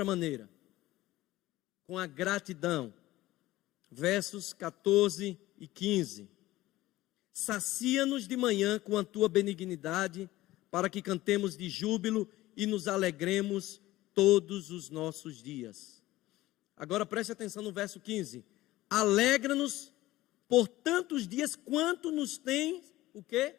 maneira. Com a gratidão. Versos 14 e 15. Sacia-nos de manhã com a tua benignidade, para que cantemos de júbilo e nos alegremos todos os nossos dias. Agora preste atenção no verso 15. Alegra-nos por tantos dias quanto nos tem, o quê?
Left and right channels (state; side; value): quieter; right; 17.0 dB